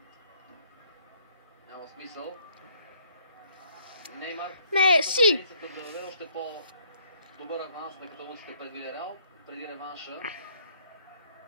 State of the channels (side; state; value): both; inverted; correlation -0.65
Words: няма смисъл. Неймар Меси! да даде още по-добър аванс на каталунците пред Вилерал преди реванша